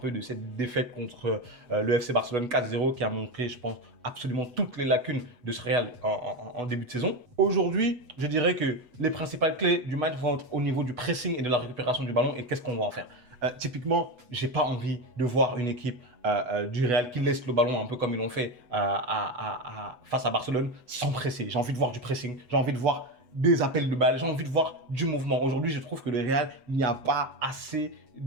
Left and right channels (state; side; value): late; left; 8.1 ms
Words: de cette défaite contre le FC Barcelone 4-0 qui a montré, je pense, absolument toutes les lacunes de ce Real en début de saison. Aujourd'hui, je dirais que les principales clés du match vont être au niveau du pressing et de la récupération du ballon et qu'est-ce qu'on va en faire. Typiquement, j'ai pas envie de voir une équipe du Real qui laisse le ballon un peu comme ils l'ont fait face à Barcelone sans presser. J'ai envie de voir du pressing, j'ai envie de voir des appels de balles, j'ai envie de voir du mouvement. Aujourd'hui, je trouve que le Real, il n'y a pas assez